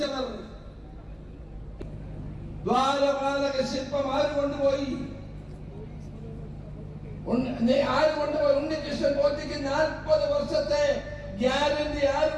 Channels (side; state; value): both; identical; correlation 1.00